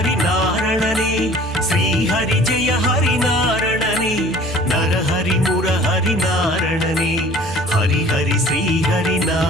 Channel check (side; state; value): both; normal; correlation 0.49